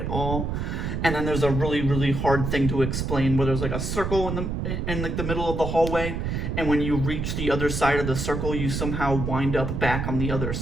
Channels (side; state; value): right; noise; rumble, 2 dB below the sound